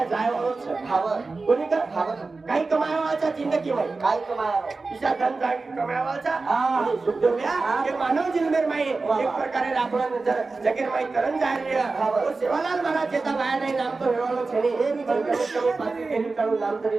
જાય વાળો છે ખાવર કોની કા કાઈ કમાયા છે જિંદગીમાં કાઈ કમાયા ઈશા ધન જાગી કમાયા છે સુખદેવ્યા કે માનવ જન્મે માં એક પ્રકારે આપણો જગીર માં તરણ જાય રહ્યા તો સેવાલાલ મહારાજ જેતા બાયા નામ તો હેવાળો છે ને એ બી તમે પાછી તેની તારું નામ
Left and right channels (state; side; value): quieter; left; 3.8 dB